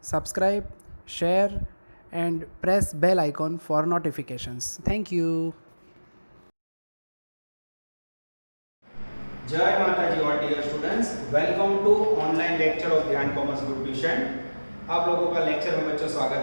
subscribe, share and press bell icon for notifications. Thank you. जय माता जी और dear students, welcome to online lecture of Dhyan commerce group tuition. आप लोगों का lecture में बच्चों स्वागत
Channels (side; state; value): both; inverted; correlation -1.00